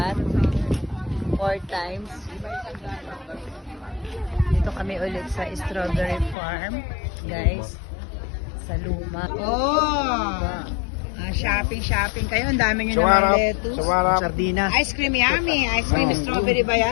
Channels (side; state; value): right; drops out; at 6.4 s